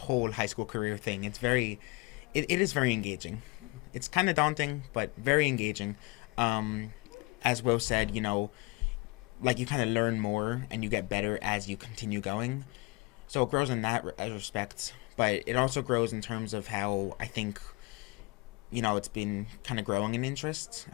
high school career thing. It's very, it is very engaging. It's kind of daunting, but very engaging. As Will said, like you kind of learn more and you get better as you continue going. So it grows in that respect, but it also grows in terms of how I think, it's been kind of growing in interest,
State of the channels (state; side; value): quieter; right; 25.5 dB